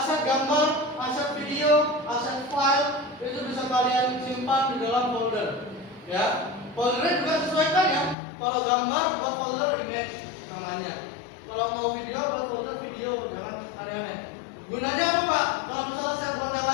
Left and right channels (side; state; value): right; drops out; at 8.2 s